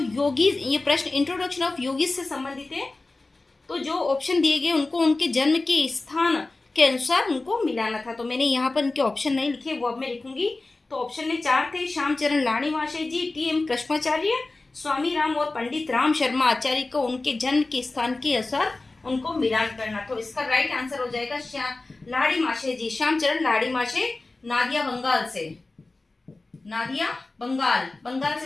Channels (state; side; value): quieter; right; 3.2 dB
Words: ये प्रश्न इंट्रोडक्शन ऑफ योगीज से संबंधित है। तो जो ऑप्शन दिए गए उनको उनके जन्म के स्थान के अनुसार उनको मिलाना था। तो मैंने यहाँ पर इनके ऑप्शन नहीं लिखे, वो अब मैं लिखूंगी। तो ऑप्शन में 4 थे, श्यामचरण लाड़ीवासे जी, टी.एम. कृष्णाचार्य, स्वामी राम और पंडित राम शर्मा आचार्य को उनके जन्म के स्थान के अनुसार उनको मिलान करना। तो इसका राइट आंसर हो जाएगा लाड़ीवासे जी, श्यामचरण लाड़ीवासे, नादिया बंगाल से, नादिया बंगाल